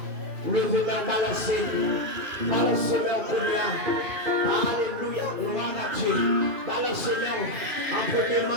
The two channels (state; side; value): late; left; 2.9 ms